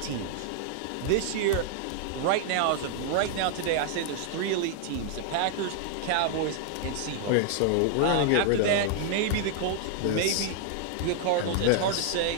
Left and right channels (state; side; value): different; both; correlation 0.00